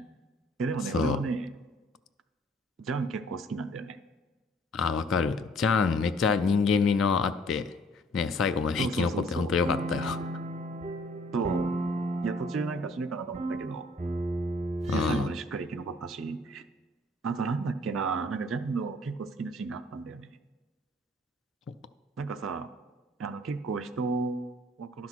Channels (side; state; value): both; normal; correlation 0.58